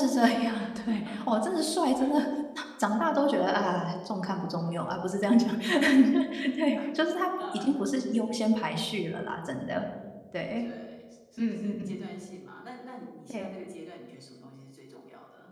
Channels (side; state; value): both; identical; correlation 1.00